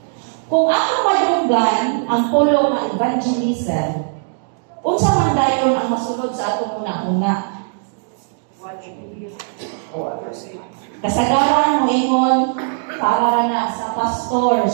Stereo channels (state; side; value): silent; left; digital silence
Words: Kung ako madunggan ang pulo ng evangelism, unsa man dayon ang masulod sa atong una-una? Kasagaran mo ingon para na sa